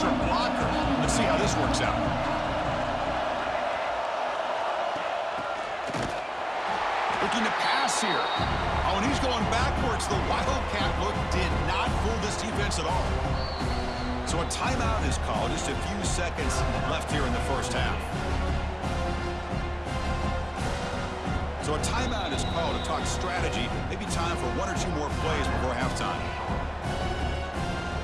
blocker. Let's see how this works out. Looking to pass here. Oh, and he's going backwards. The Wildcat look did not fool this defense at all. So a timeout is called. Just a few seconds left here in the 1st half. So a timeout is called to talk strategy. Maybe time for one or two more plays before halftime.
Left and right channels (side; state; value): both; identical; correlation 1.00